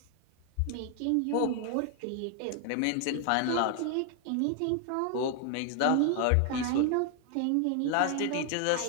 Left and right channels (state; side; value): different; both; correlation 0.00